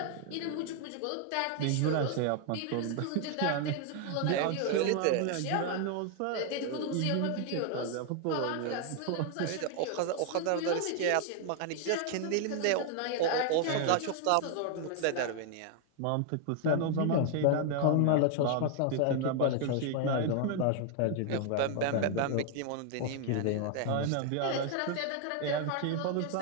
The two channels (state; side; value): different; both; correlation 0.00